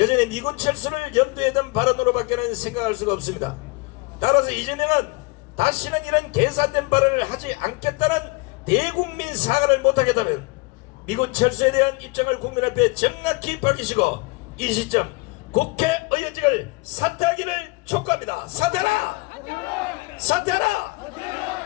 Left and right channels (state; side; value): quieter; right; 26.5 dB